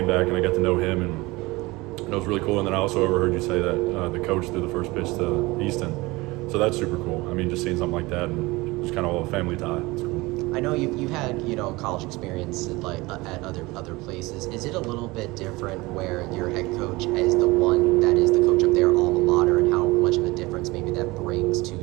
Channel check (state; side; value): quieter; left; 22.0 dB